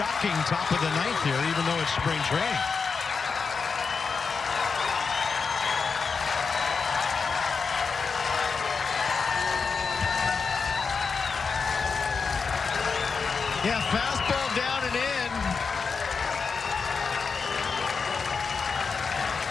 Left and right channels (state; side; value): quieter; right; 5.2 dB